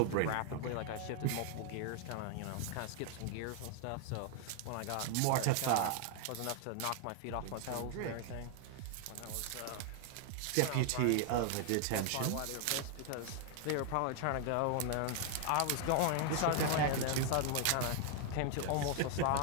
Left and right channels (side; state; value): both; different; correlation 0.00